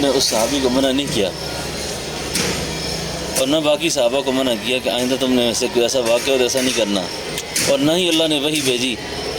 اس صحابی کو منع نہیں کیا اور نہ باقی صحابہ کو منع کیا کہ آئندہ تم نے ایسے کوئی ایسا واقعہ ہو تو ایسا نہیں کرنا، اور نہ ہی اللہ نے وہی بھیجی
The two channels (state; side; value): identical; both; correlation 1.00